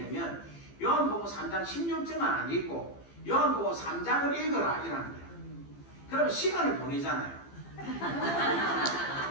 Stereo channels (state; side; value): late; right; 15 ms